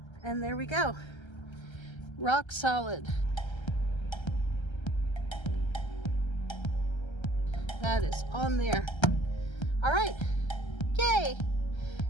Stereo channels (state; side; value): late; right; 1.3 ms